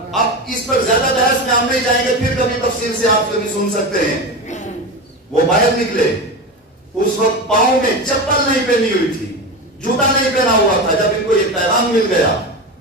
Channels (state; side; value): normal; both; correlation 0.22